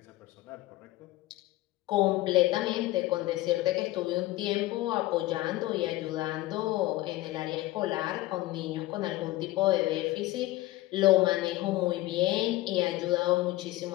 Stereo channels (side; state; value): right; quieter; 17.5 dB